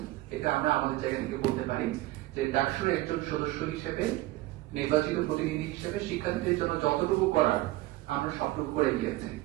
এটা আমরা আমাদের জায়গা থেকে বলতে পারি যে ডাকসুর একজন সদস্য হিসেবে, নির্বাচিত প্রতিনিধি হিসেবে শিক্ষার্থীদের জন্য যতটুকু করার আমরা সবটুকু করে গিয়েছি।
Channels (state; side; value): quieter; left; 18.1 dB